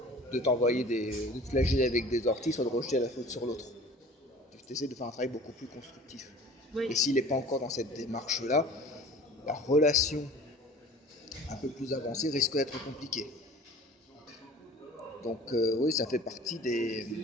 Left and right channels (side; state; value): both; normal; correlation 0.45